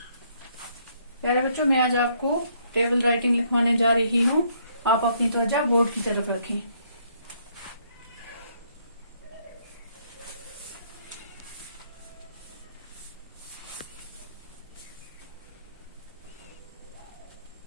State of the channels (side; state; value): both; inverted; correlation -0.69